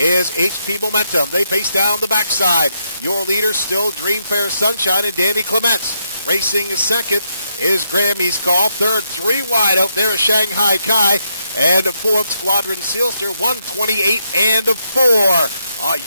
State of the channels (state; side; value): inverted; both; correlation -0.77